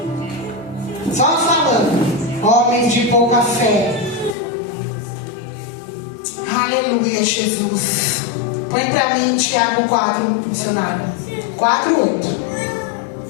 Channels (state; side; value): drops out; right; at 4.4 s